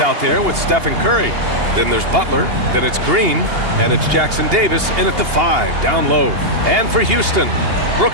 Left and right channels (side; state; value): left; late; 2.8 ms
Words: there with Stephen Curry. Then there's Butler, then it's Green, and it's Jackson Davis in at the 5, down low. And for Houston,